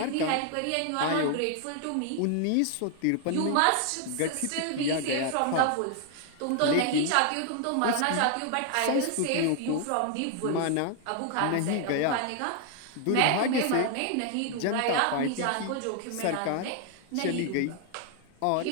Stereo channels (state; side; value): different; both; correlation 0.00